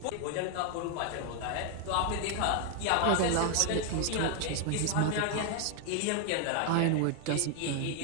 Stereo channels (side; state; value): both; different; correlation 0.00